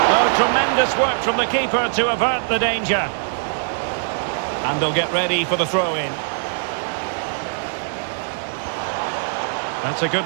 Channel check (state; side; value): silent; left; digital silence